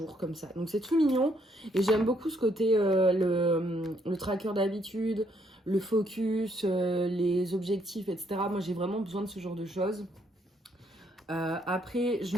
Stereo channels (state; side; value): normal; both; correlation 0.71